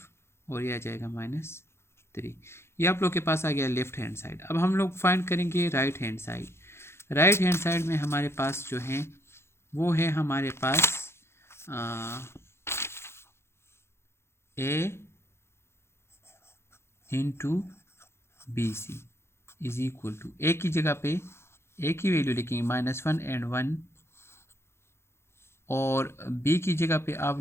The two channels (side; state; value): right; late; 0.12 ms